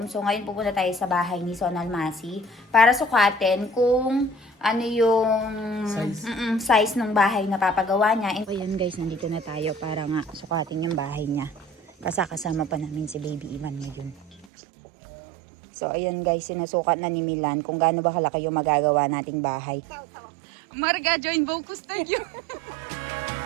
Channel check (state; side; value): drops out; left; at 14.5 s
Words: So, ngayon pupunta tayo sa bahay ni Son Almasi para sukatin kung ano yung size ng bahay na papagawa niya. And, ayan guys, nandito na tayo para nga sukatin yung bahay niya. Kasama pa namin si Baby Ivan ngayon. So, ayan guys, sinusukat na ni Milan kung gaano ba kalaki yung magagawa nating bahay. Marga, join Vocus Studio!